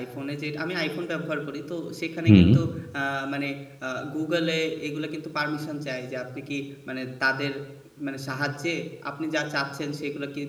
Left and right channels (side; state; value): both; identical; correlation 1.00